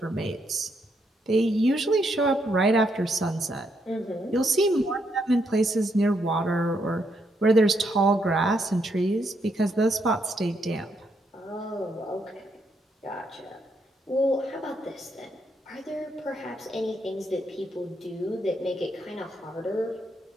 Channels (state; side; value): normal; both; correlation 0.77